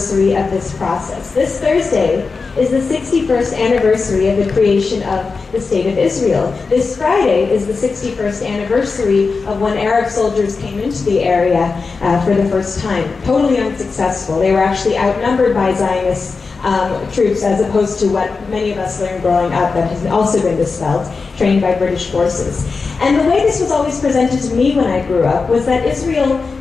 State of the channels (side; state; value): right; quieter; 4.5 dB